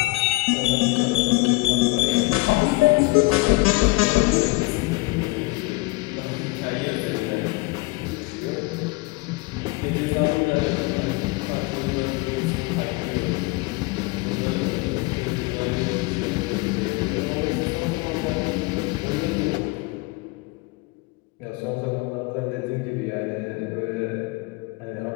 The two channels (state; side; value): quieter; right; 23.1 dB